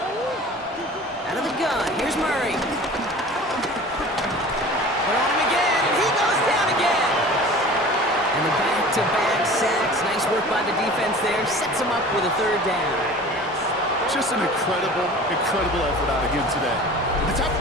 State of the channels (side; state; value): both; normal; correlation 0.41